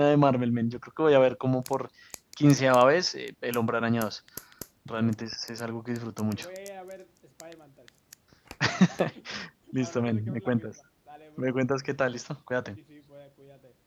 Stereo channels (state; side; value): identical; both; correlation 1.00